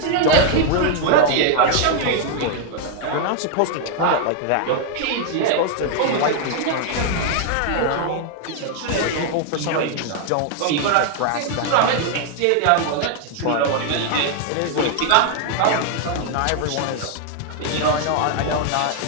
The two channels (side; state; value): both; different; correlation 0.00